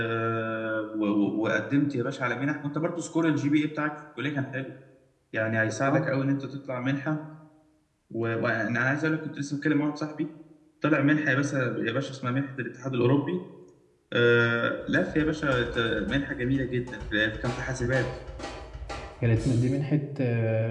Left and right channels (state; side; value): identical; both; correlation 1.00